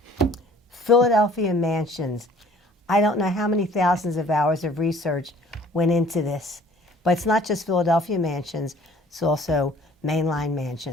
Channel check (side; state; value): both; normal; correlation 0.53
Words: Philadephia Mansions. I don't know how many thousands of hours of research went into this. But it's not just Philadephia Mansions, it's also mainline